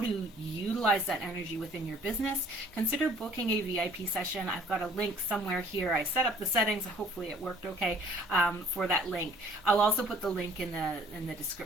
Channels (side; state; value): both; normal; correlation 0.54